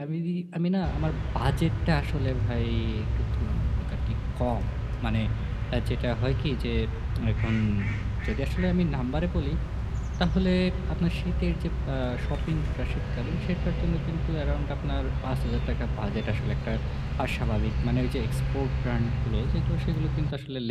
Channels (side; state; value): both; identical; correlation 1.00